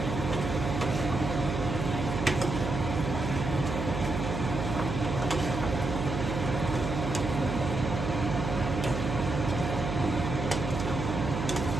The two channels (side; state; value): right; noise; hum, 3 dB below the sound